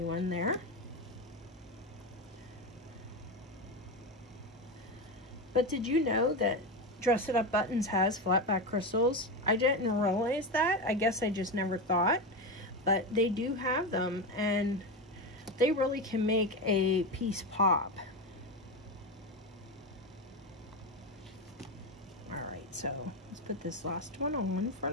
there. But did you know that Dress It Up Buttons has flat back crystals? I didn't realize that. I guess I just never thought. But they do have them, and they really can make a piece pop. Alright, so let's put this last one on for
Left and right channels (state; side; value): normal; both; correlation 0.16